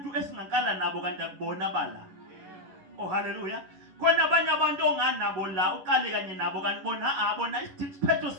esingakala nabo kanti akubona bala. Oh hallelujah. Khona abanye abantu onganabo la uqale kanye nabo kanti bona bona isiphetho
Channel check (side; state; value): left; late; 11 ms